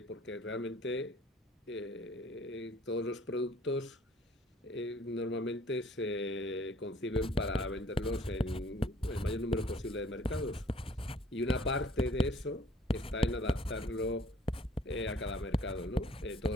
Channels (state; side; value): normal; both; correlation 0.56